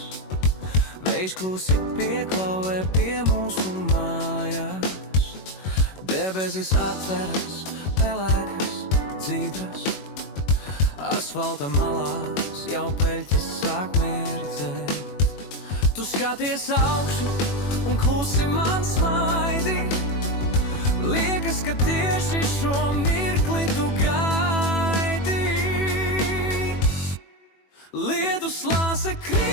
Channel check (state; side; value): late; right; 21 ms